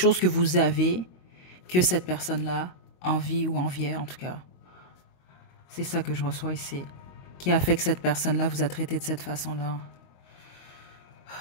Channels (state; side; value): late; right; 22 ms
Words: que vous avez que cette personne-là envie ou enviait, en tout cas. C'est ça que je reçois ici. Qui a fait que cette personne-là vous a traité de cette façon-là.